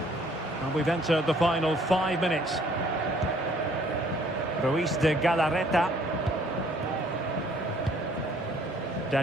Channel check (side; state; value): both; normal; correlation 0.60